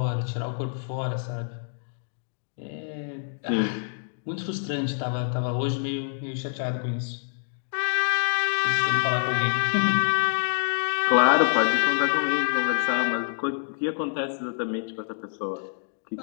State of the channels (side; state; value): right; silent; digital silence